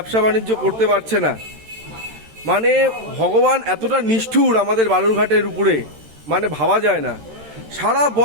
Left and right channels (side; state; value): left; late; 13 ms